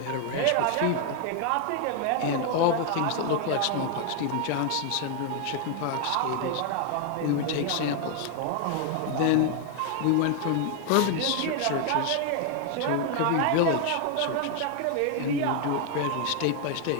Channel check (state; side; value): different; both; correlation 0.00